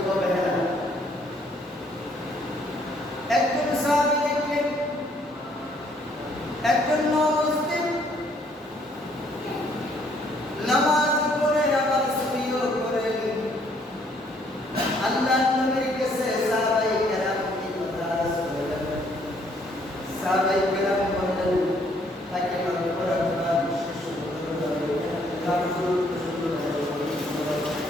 অবহেলা। একজন সাহাবী দেখলেন একজন নও-মুসলিম নামাজ পড়ে আবার চুরিও করেন। আল্লাহর নবীর কাছে সাহাবায়ে কেরাম এই কথা শুনলেন। সাহাবায়ে কেরাম বললেন, তাকে পড়াশোনা শেষ করতে হবে,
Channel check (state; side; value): normal; both; correlation 0.66